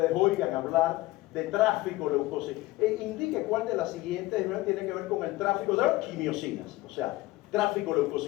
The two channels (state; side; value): quieter; right; 18.7 dB